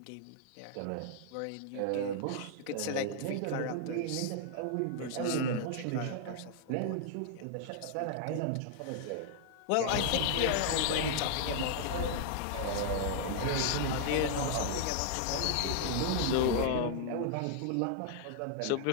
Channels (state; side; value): different; both; correlation 0.00